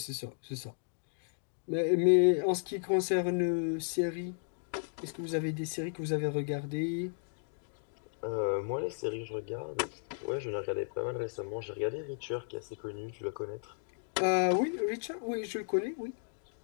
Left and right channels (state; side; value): silent; right; digital silence